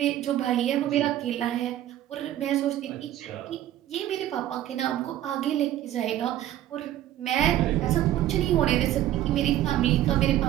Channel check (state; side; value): quieter; left; 12.8 dB